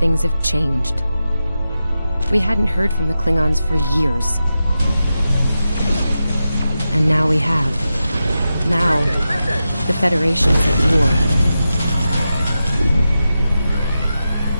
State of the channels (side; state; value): both; inverted; correlation -0.91